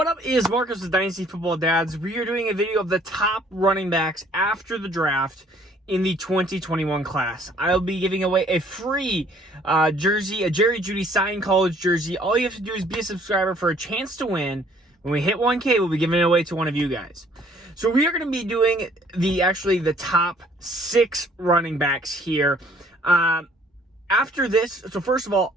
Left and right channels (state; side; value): normal; both; correlation 0.59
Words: up is Marcus with Dynasty Football Dads. We are doing a video of the top running backs after the draft in the 2021 class. I'll be giving away a free jersey, a Jerry Jeudy signed college jersey. All you have to do is be a subscriber for a chance to win. When we hit 1K, we'll be giving it away to one of you guys. So we are going to be doing the top 6 running backs here. After this, so first of all,